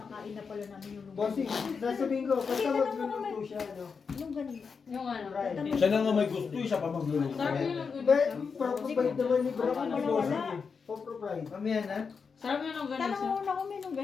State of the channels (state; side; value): quieter; right; 5.5 dB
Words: na pala namin yung Bossing, longganisa. sasabihin ko, basta Kasi tanong mo magluluto naman. siya, ano. Longganisa. Yung ano. Right. Siya na nga may gusto, siya pa magluluto. Sarap yung longganisa. But, proprovide naman ni Bro. Wala, Ni wala. Bossing eh. Proprovide. Mamaya na. Sarap yung Tanong longganisa. mo na kung may